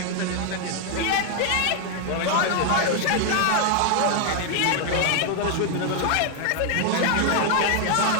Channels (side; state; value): both; different; correlation 0.01